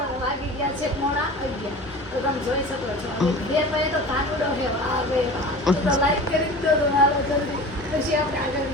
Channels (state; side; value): normal; both; correlation 0.37